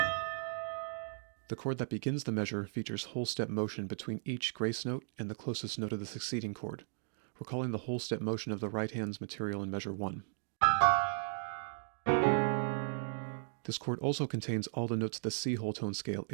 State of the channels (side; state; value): left; silent; digital silence